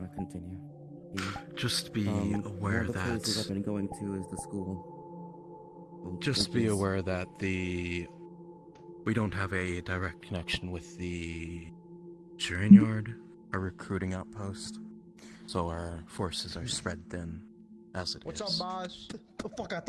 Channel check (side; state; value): both; identical; correlation 1.00